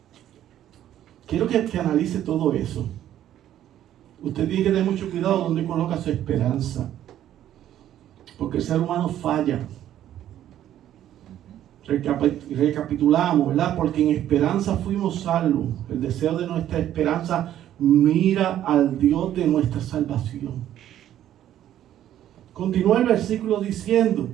Quiero que analice todo eso. Usted tiene que tener mucho cuidado donde coloca su esperanza. Porque el ser humano falla. Recapitulamos, ¿verdad? Porque en esperanza fuimos salvos. El deseo de nuestra esperanza mira al Dios de nuestra salvación. Continúa el versículo diciendo:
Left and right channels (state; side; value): quieter; left; 11.7 dB